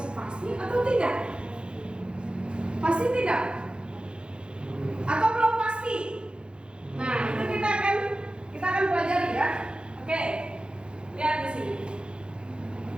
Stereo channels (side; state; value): left; late; 0.053 ms